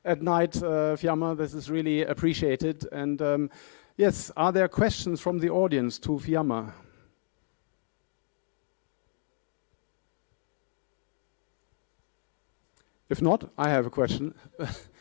at night, Fiamma. This is really appreciated. And yes, are there questions from the audience to Fiamma? If not, I have a question.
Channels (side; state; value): right; silent; digital silence